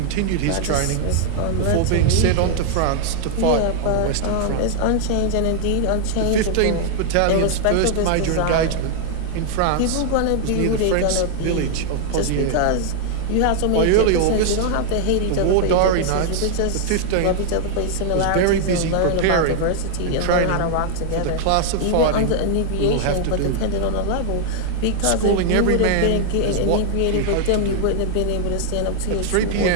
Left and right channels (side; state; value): both; different; correlation 0.00